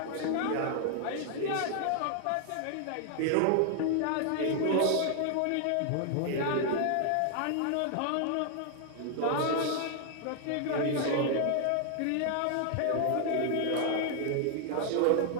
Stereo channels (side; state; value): both; different; correlation 0.00